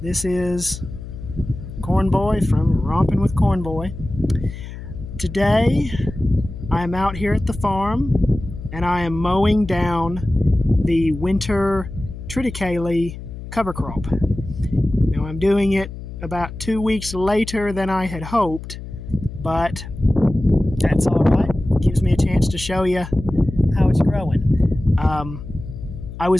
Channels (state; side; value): noise; left; hum, 11 dB below the sound